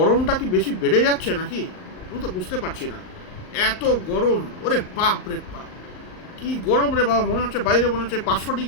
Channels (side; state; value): right; late; 38 ms